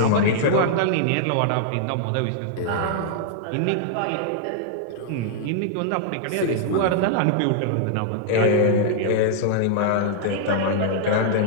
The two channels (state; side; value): different; both; correlation -0.01